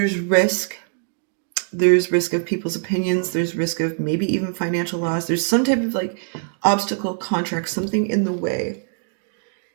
risk. There's risk of people's opinions. There's risk of maybe even financial loss. There's some type of like obstacle, contract, something in the way.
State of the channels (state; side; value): silent; left; digital silence